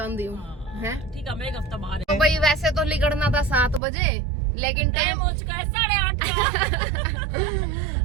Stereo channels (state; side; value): drops out; left; at 3.8 s